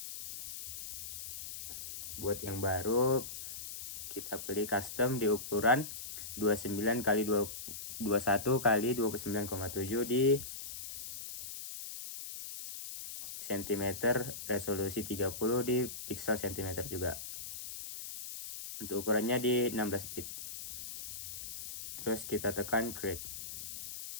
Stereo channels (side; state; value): left; noise; hiss, 9 dB below the sound